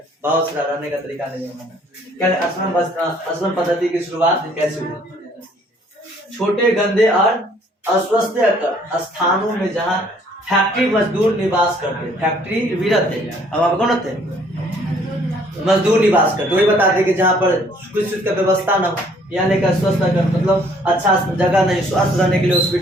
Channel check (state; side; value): normal; both; correlation 0.61